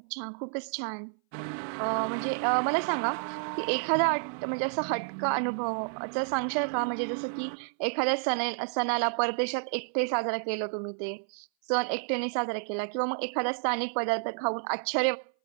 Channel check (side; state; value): left; silent; 58 dB below the other